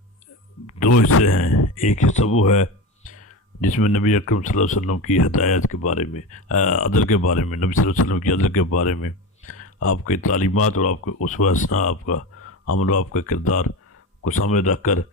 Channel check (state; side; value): normal; both; correlation 0.24